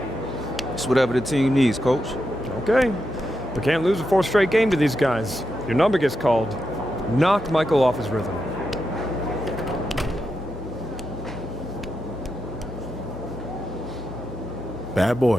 It's whatever the team needs, coach. Okay. We can't lose a fourth straight game to these guys. Your number gets called. Knock Michael off his rhythm. Bad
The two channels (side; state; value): both; normal; correlation 0.86